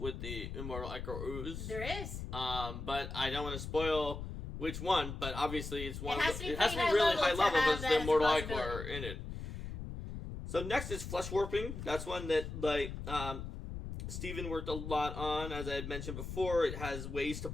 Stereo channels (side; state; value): left; noise; rumble, 7 dB below the sound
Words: with the Immortal Ichor Ooze. There is. But I don't want to spoil which one, but obviously it's one. It has to be high really level high level have because the Immortal as a Ichor in it. So next is Flesh Warping. That's one that, Steven worked a lot on. As I had mentioned before, it has ways to